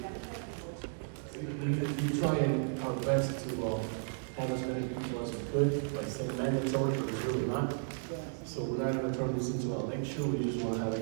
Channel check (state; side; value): silent; left; digital silence